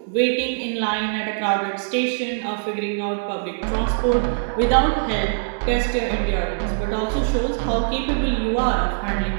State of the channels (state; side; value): silent; left; digital silence